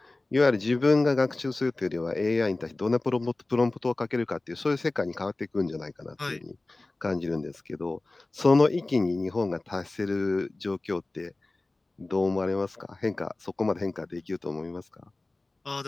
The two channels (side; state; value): right; quieter; 3.0 dB